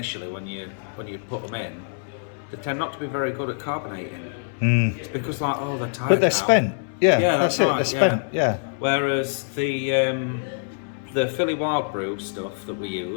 when you put them in, they tend not to be very good at carbonating. It's because they're tired. But they're now. spent. Yeah, that's it. right, They're spent. Yeah. Whereas the Philly Wild Brew stuff that we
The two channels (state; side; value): silent; right; 61 dB below the other